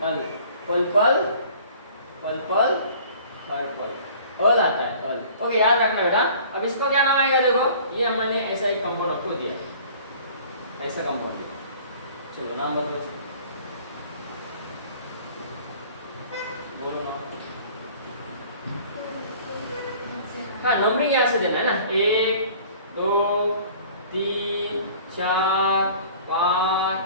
अल। पल्पल पर्पल पर्पल, अल आता है, अल। ओके याद रखना बेटा। अब इसका क्या नाम आएगा, देखो ये मैंने ऐसा एक कंपाउंड आपको दिया, ऐसा कंपाउंड। चलो नाम बदलो, बोलो नाम। हाँ नंबरिंग यहाँ से देना है ना, 1 2 3 4 5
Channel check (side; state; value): both; inverted; correlation -0.49